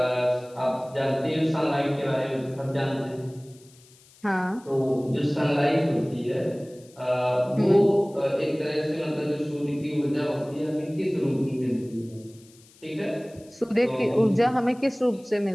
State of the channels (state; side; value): noise; left; hiss, 27 dB below the sound